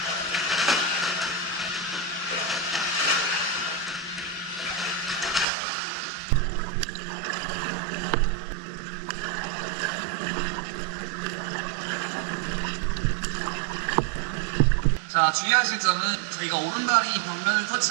자, 주의하실 점은 저희가 오른발이 벽면을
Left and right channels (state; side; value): drops out; left; at 5.5 s